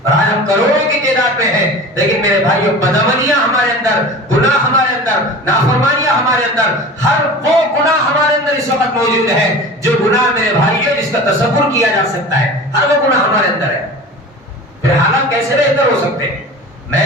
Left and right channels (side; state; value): both; normal; correlation 0.36